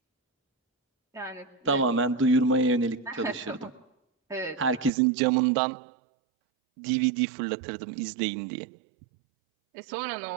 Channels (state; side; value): drops out; left; at 4.9 s